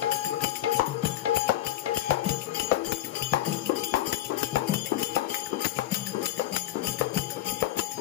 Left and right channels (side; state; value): right; quieter; 14.1 dB